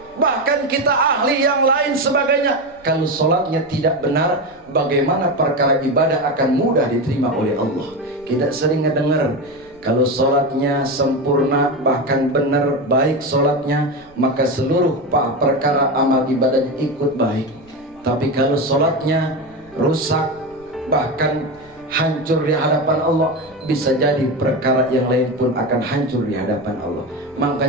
bahkan kita ahli yang lain sebagainya. Kalau sholatnya tidak benar, bagaimana perkara ibadah akan mudah diterima oleh Allah? Kita sering ngedengar, kalau sholatnya sempurna, bahkan benar, baik sholatnya, maka seluruh perkara amal ibadahnya ikut baik. Tapi kalau sholatnya rusak, bahkan hancur di hadapan Allah, bisa jadi perkara yang lain pun akan hancur di hadapan Allah.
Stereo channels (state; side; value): noise; right; rumble, 29 dB below the sound